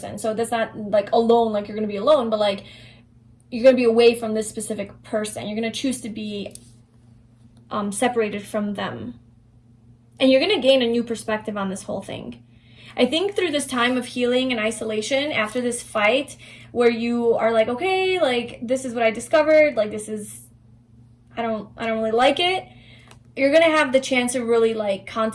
So that's not like alone, like you're going to be alone, but like you're going to be away from this specific person. You're going to choose to be separated from them. And you're going to gain a new perspective on this whole thing. I think through this time of healing and isolation, after this fight where you are like, okay, like this is what I discovered, like this is, I don't really like it. You're going to have the chance to really like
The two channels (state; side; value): identical; both; correlation 1.00